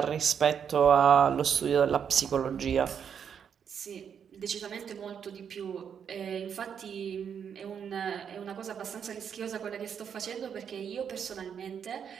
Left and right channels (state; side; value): quieter; left; 7.7 dB